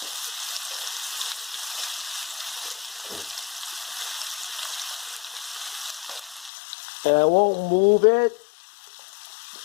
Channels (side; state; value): right; drops out; at 6.5 s